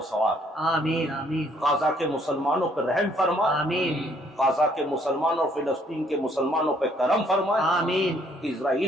ثواب دے۔ آمین، آمین، غزہ کے مسلمانوں پر رحم فرمائے، آمین، غزہ کے مسلمانوں اور فلسطین کے مسلمانوں پہ کرم فرمائے، آمین،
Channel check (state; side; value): normal; both; correlation 0.65